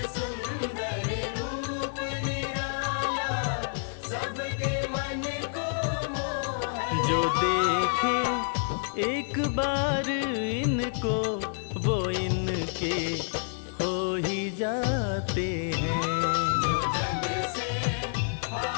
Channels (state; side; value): silent; right; digital silence